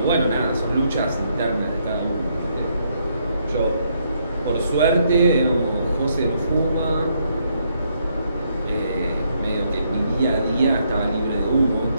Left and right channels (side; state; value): both; inverted; correlation -0.74